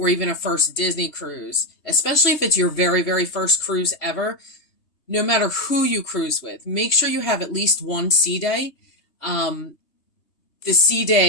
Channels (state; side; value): late; right; 3.3 ms